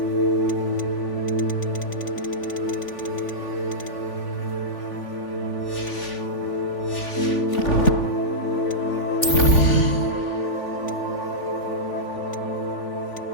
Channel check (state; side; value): late; right; 3.5 ms